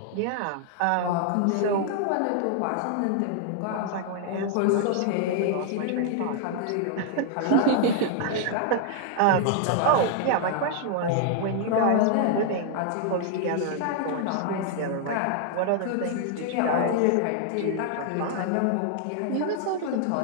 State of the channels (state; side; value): different; both; correlation 0.00